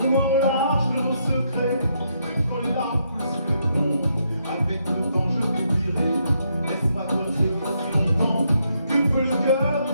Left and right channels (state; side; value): inverted; both; correlation -0.77